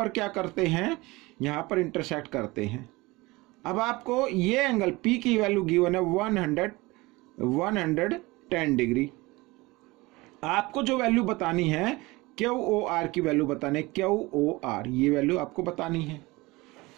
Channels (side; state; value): left; quieter; 22.2 dB